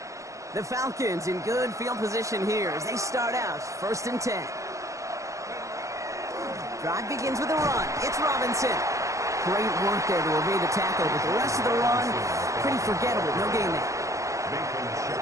The Falcons in good field position here as they start out 1st and 10. Drive begins with a run. It's Robinson. Great work there to evade the tackle, but the rest of the run, pretty forgettable. No gain there.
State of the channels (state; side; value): late; left; 0.15 ms